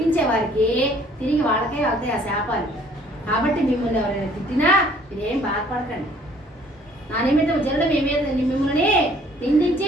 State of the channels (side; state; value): both; normal; correlation 0.58